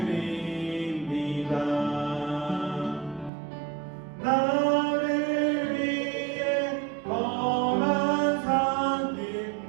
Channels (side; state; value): left; drops out; at 3.3 s